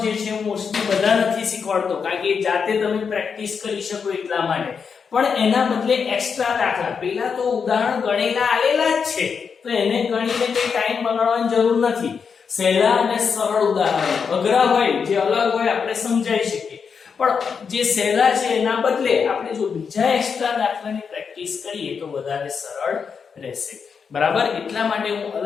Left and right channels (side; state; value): right; quieter; 6.1 dB